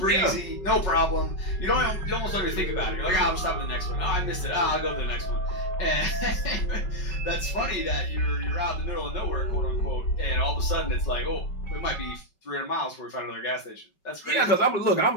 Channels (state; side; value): late; right; 5.3 ms